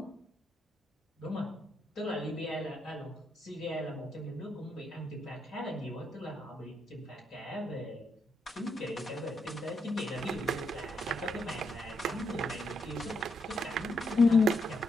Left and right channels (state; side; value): normal; both; correlation 0.79